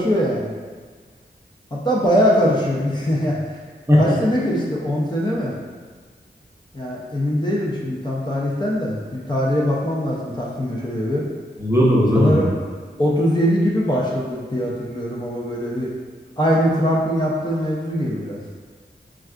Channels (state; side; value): normal; both; correlation 0.74